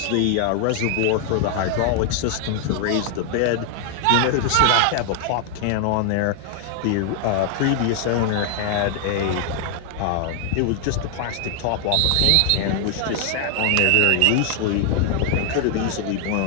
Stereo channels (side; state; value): both; different; correlation 0.00